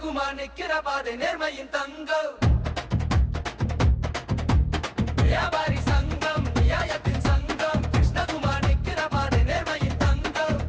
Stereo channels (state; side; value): identical; both; correlation 1.00